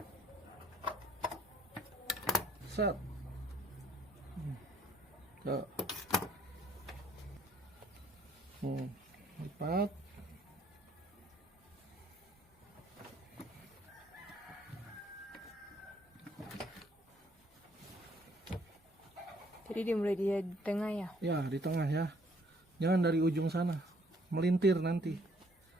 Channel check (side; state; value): both; normal; correlation 0.64